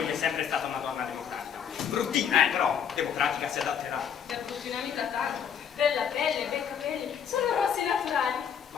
è sempre stata una donna democratica. Bruttina, però democratica si adatterà. Per bruttina mica tanto. Bella pelle, bei capelli, sono rossi naturali.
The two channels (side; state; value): right; quieter; 8.0 dB